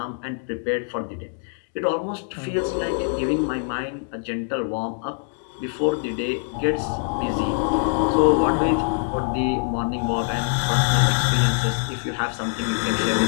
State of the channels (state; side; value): silent; right; digital silence